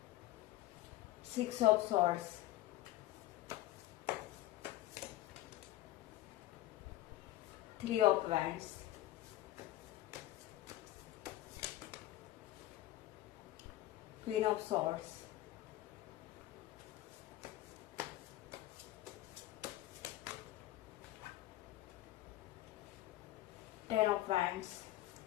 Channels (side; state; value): right; quieter; 15.4 dB